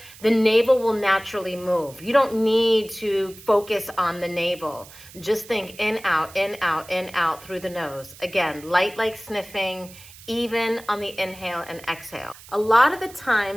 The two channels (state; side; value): noise; right; hiss, 20 dB below the sound